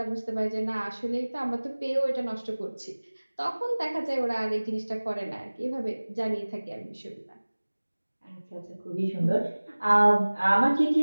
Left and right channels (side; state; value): both; inverted; correlation -1.00